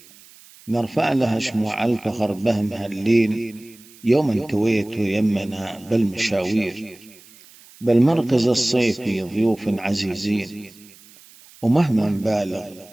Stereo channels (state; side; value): noise; right; hiss, 24 dB below the sound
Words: نرفع لها شموع الفخر بهم هاللين، يوم كويت يمنا بالمشاوير. بالمركز الصيفي ضيوف عزيزين، ومهما نبالغ